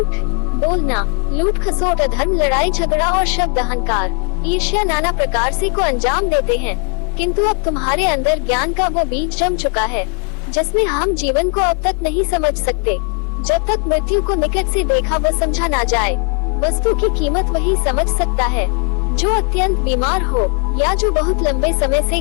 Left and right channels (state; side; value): quieter; right; 37.8 dB